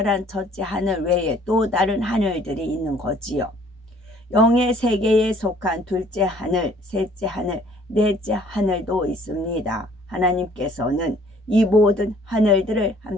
첫째 하늘 외에 또 다른 하늘들이 있는 거지요. 영의 세계에 속한 둘째 하늘, 셋째 하늘, 넷째 하늘도 있습니다. 하나님께서는 이 모든 하늘들을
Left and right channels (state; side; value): normal; both; correlation 0.57